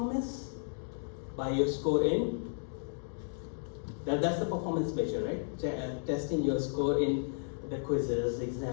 By your score in, that's the performance measure, right? Testing your score in the quizzes,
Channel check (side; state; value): right; silent; digital silence